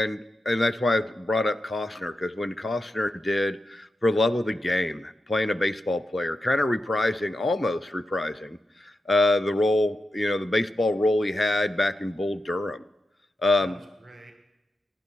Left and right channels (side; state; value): both; normal; correlation 0.89